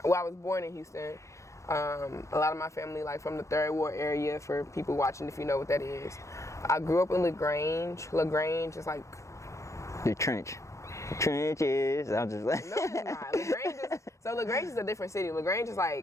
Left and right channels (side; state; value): right; late; 0.15 ms